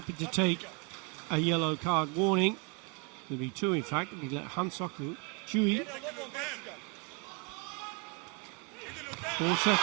to take a yellow card warning. There'll be 2 in fact. We let Hansoku Chui. 4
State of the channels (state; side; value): quieter; left; 34.0 dB